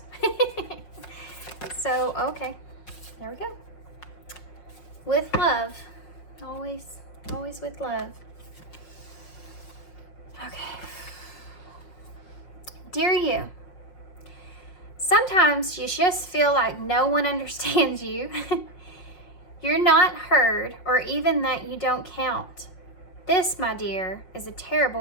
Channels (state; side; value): late; right; 5.5 ms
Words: So, okay. There we go. With love. Always with love. Okay. Dear you, sometimes you just feel like no one understands you. You're not heard, or even that you don't count. This, my dear, is a